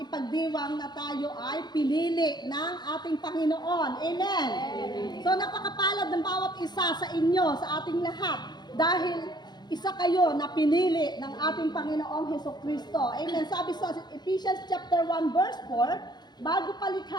ipagdiwang na tayo ay pinili ng ating Panginoon. Amen. So napakapalad ng bawat isa sa inyo, sa ating lahat, dahil isa kayo na pinili ng ating Panginoong Hesukristo. Amen. Sabi sa Ephesians chapter 1 verse 4, bago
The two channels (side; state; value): right; late; 0.21 ms